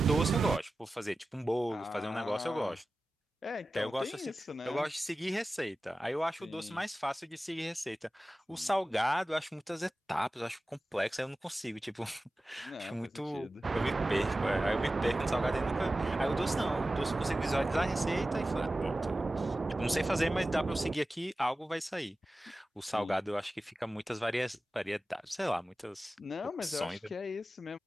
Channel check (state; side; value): normal; both; correlation 0.95